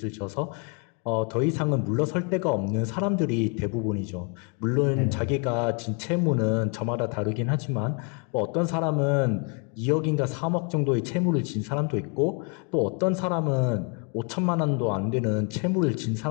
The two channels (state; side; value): quieter; right; 35.8 dB